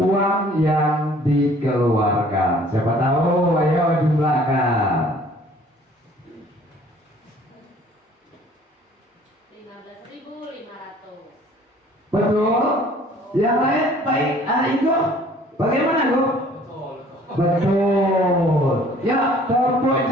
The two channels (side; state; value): both; normal; correlation 0.54